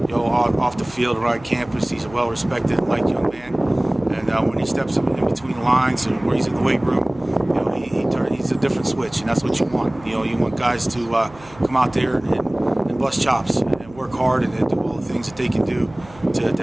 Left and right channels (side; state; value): right; noise; hum, 22 dB below the sound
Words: Off the field, around campus, he's a well-respected and liked young man. And when he steps in between the lines and where he's in the weight room, he's a different switch, and that's what you want. You want guys to come out there and bust chops and work hard and do all the things that they can do to